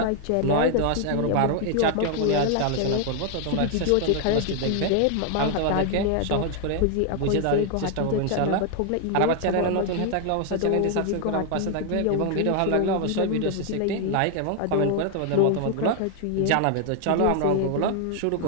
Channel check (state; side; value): different; both; correlation 0.00